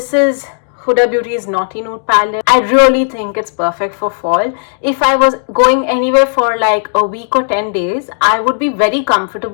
is Huda Beauty's Naughty Nude palette. I really think it's perfect for fall. If I was going anywhere for like a week or 10 days, I would be very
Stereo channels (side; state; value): right; silent; digital silence